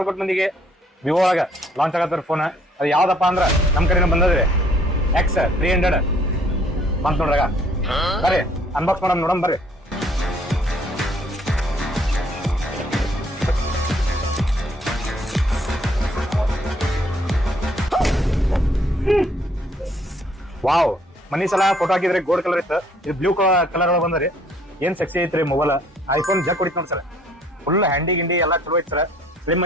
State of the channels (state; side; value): normal; both; correlation 0.62